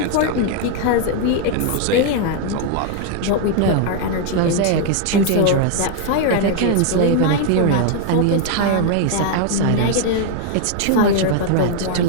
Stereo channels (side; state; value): both; different; correlation 0.00